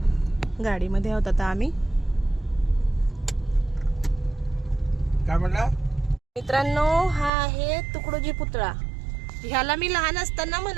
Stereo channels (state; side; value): drops out; left; at 7.3 s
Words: गाडीमध्ये आहोत आता आम्ही. काय म्हणला? मित्रांनो, हा आहे तुकडोजी पुतळा. ह्याला मी लहान असताना